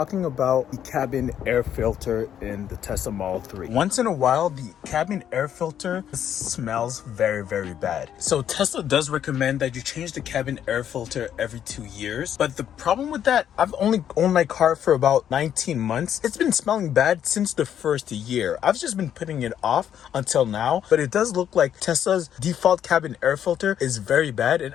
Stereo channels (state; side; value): quieter; right; 9.7 dB